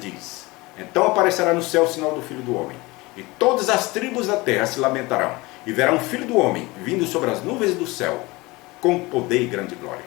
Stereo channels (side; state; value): right; quieter; 22.7 dB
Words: então aparecerá no céu o sinal do Filho do Homem. E todas as tribos da terra se lamentarão. E verão o Filho do Homem vindo sobre as nuvens do céu, com poder e grande glória.